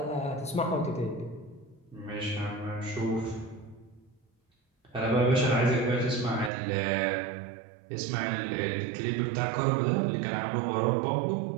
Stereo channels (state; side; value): drops out; left; at 6.5 s